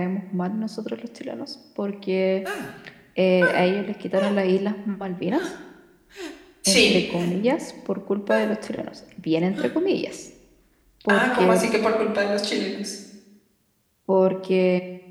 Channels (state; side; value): identical; both; correlation 1.00